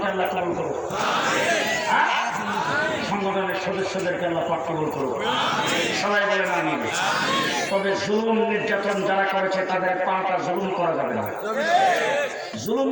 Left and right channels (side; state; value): both; identical; correlation 1.00